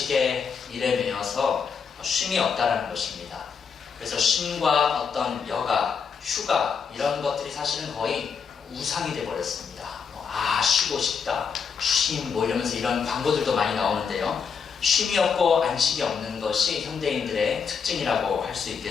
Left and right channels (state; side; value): quieter; right; 6.2 dB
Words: 일에 매여서 쉼이 없다는 것입니다. 그래서 쉼과 어떤 여가, 휴가 이런 것들이 사실은 거의 우상이 되어버렸습니다. 쉬고 싶다, 쉼 이러면서 이런 광고들도 많이 나오는데요. 쉼이 없고 안식이 없는 것이 현대인들의 특징이라고 할 수